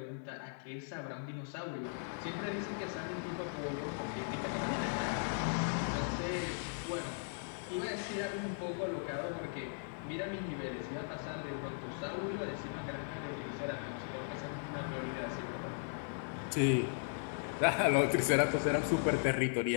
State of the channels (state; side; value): silent; right; digital silence